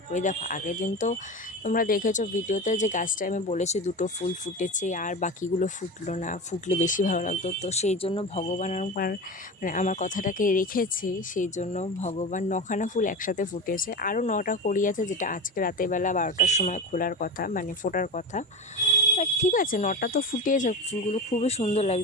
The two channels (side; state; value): both; normal; correlation 0.26